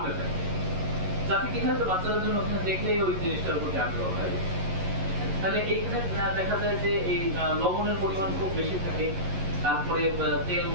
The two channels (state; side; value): late; left; 11 ms